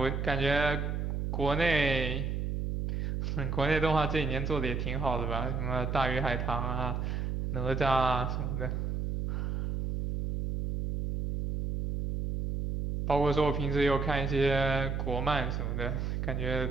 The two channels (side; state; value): right; noise; hum, 1 dB below the sound